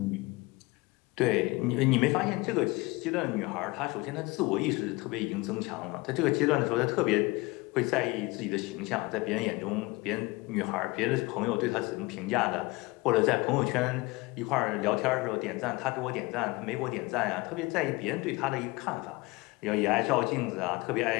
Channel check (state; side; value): quieter; right; 23.5 dB